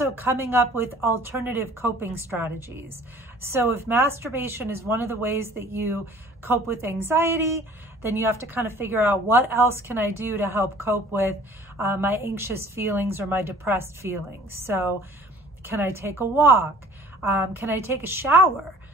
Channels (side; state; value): both; normal; correlation 0.50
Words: coming up with alternative coping strategies. So if masturbation is one of the ways that you cope with anxiety, then you have to kind of figure out what else can I do to help cope with my anxious feelings or my depressed feelings. So can I take a walk? Can I take a shower?